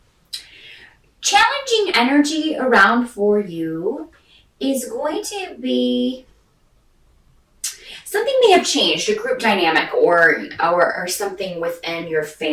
Challenging energy around for you is going to be something may have changed, a group dynamic or something within your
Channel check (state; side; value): identical; both; correlation 1.00